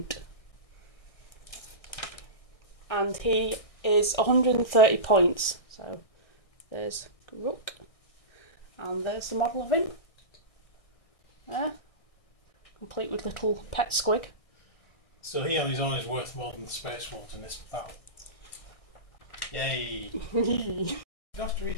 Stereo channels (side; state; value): right; late; 1.6 ms